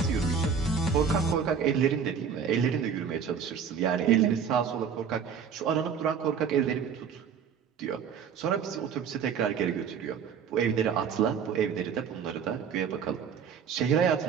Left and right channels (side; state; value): left; quieter; 7.0 dB